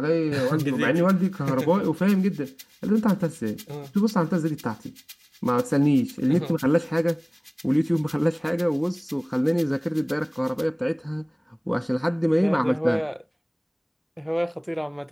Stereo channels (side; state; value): both; identical; correlation 1.00